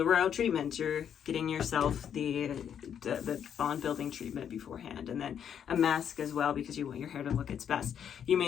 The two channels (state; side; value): quieter; right; 8.6 dB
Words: royal treatment, you're getting yourself the bond building treatment beforehand, and then a mask as well because you want your hair to look its best. You